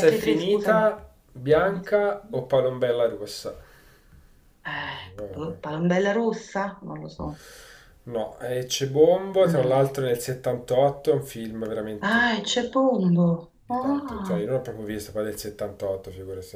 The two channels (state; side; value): identical; both; correlation 1.00